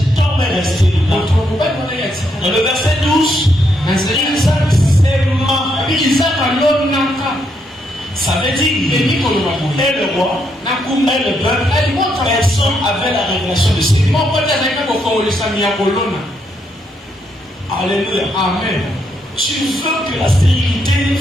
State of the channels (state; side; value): normal; both; correlation 0.77